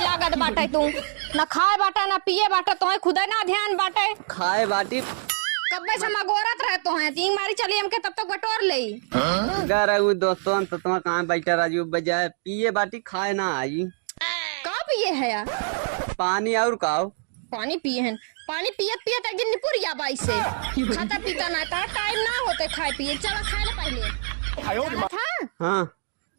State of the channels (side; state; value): left; silent; 62 dB below the other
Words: बाटे तू न खाए बाटा न पिए बाटा तो खुद ना ध्यान बाटे खाए बाटी कब्बा से मगोरत रहे तो है तीन मारी चली हमके तब तक बटोर ले घर दोस्तों तो तुम कहाँ बैठा राजू बजाय पिए बाटी खाए ना आई का पिए है यार पानी और काओ पानी पिए हैं पानी पियत पियत एक दिन निपुरिया बाई से खाता पीता ना था टाइम ना होते खाए पिए चला खाए ले पहले था हाँ